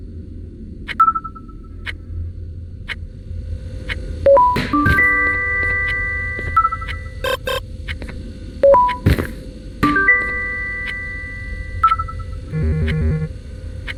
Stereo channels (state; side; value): identical; both; correlation 1.00